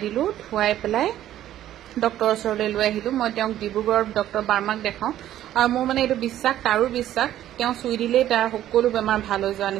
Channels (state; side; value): quieter; left; 12.5 dB